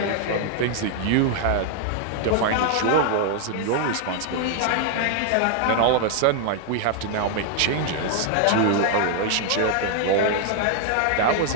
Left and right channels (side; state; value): both; different; correlation 0.00